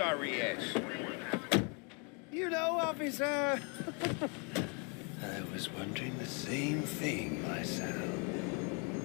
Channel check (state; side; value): quieter; right; 34.9 dB